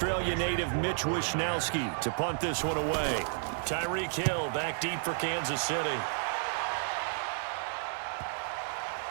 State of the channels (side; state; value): left; silent; 57 dB below the other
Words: native Mitch Wishnowsky to punt this one away. Tyreek Hill back deep for Kansas City.